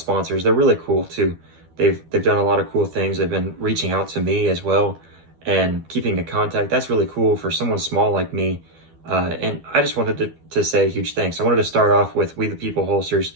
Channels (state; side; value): late; left; 12 ms